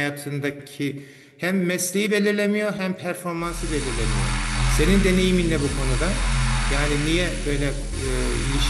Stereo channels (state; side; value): identical; both; correlation 1.00